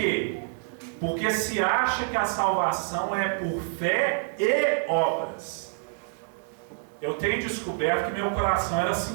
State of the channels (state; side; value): silent; left; 60 dB below the other